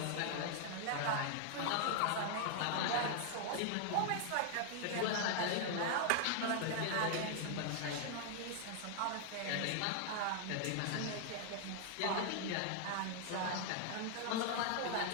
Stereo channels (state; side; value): different; both; correlation 0.00